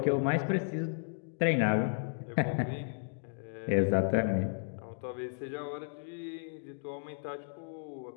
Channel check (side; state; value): right; silent; digital silence